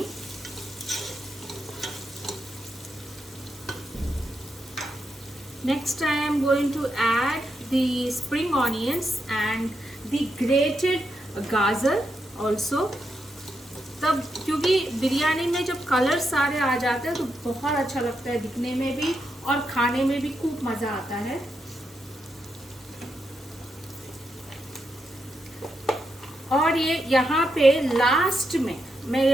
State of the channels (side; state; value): both; normal; correlation 0.83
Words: Next I am going to add the spring onions and the grated गाजर also. तब क्योंकि बिरयानी में जब colour सारे आ जाते हैं तो बहुत अच्छा लगता है दिखने में भी और खाने में भी खूब मज़ा आता है. और ये यहाँ पे लास्ट में